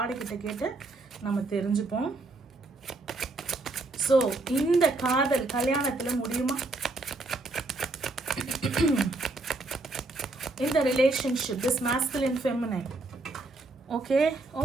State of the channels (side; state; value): left; quieter; 3.1 dB